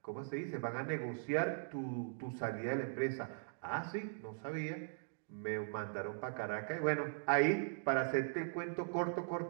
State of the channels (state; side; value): silent; left; digital silence